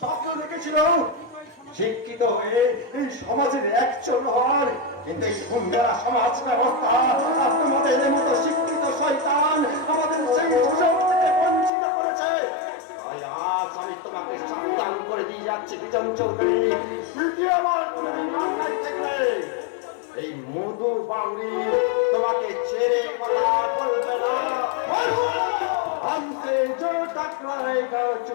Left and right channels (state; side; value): drops out; right; at 11.7 s